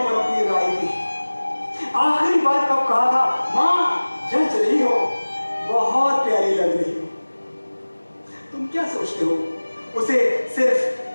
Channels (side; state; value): both; inverted; correlation -1.00